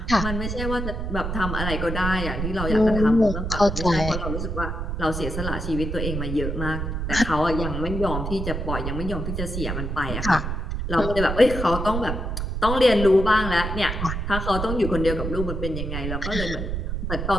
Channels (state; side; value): noise; right; rumble, 3 dB below the sound